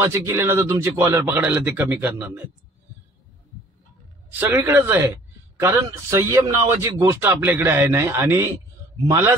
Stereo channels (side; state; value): both; normal; correlation 0.53